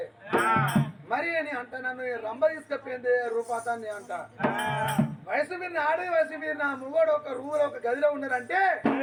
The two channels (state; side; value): identical; both; correlation 1.00